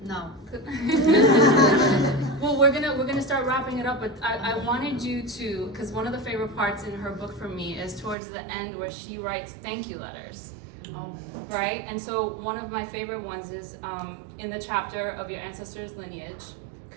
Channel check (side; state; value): left; drops out; at 8.2 s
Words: No. Well, we're gonna start wrapping it up, but I wanted you to, because one of the favorite parts in her book for me is towards the end where she writes thank you letters. Oh. Right? And so one of my favorite ones is in the chapter of your ancestors' lineage,